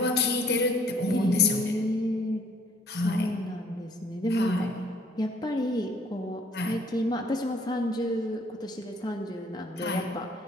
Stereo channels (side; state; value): both; normal; correlation 0.60